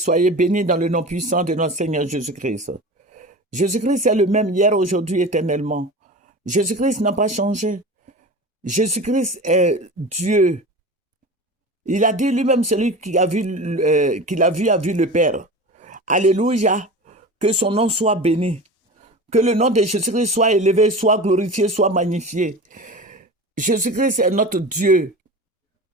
bénis dans le nom puissant de notre Seigneur Jésus-Christ. Jésus-Christ est le même hier, aujourd'hui, éternellement. Jésus-Christ n'a pas changé. Jésus-Christ est Dieu. Il a dit lui-même, celui qui a vu, qu'il a vu le Père. Alléluia, que son nom soit béni. Que le nom de Jésus-Christ soit élevé, soit glorifié, soit magnifié. Jésus-Christ est notre Dieu.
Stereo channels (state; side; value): normal; both; correlation 0.32